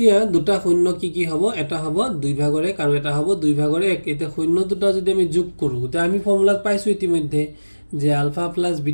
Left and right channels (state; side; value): inverted; both; correlation -1.00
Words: দুটা শূন্য কি হ'ব, এটা হ'ব 2/1 আৰু এটা হ'ব 2/1। এতিয়া শূন্য দুটা যদি আমি যোগ কৰোঁ, তেতিয়া আমি ফৰ্মুলাত পাইছোঁ ইতিমধ্যে যে আলফা প্লাছ